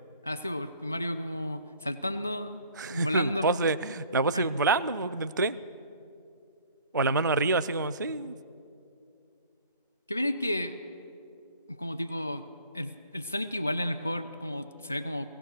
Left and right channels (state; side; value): inverted; both; correlation -0.54